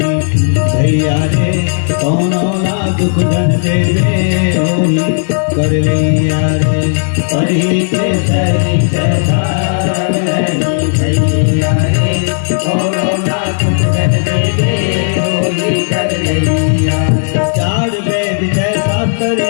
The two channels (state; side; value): silent; right; digital silence